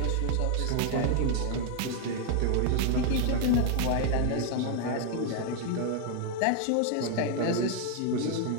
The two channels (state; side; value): different; both; correlation 0.00